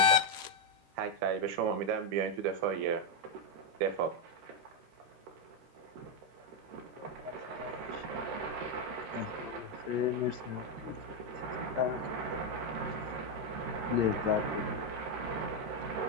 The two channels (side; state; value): left; late; 13 ms